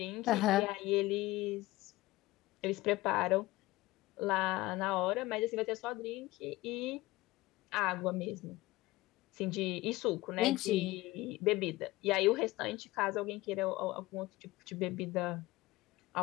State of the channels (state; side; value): quieter; right; 19.2 dB